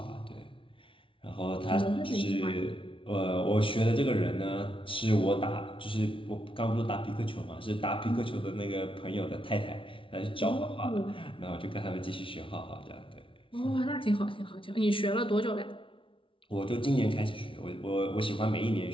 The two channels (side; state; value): right; late; 0.25 ms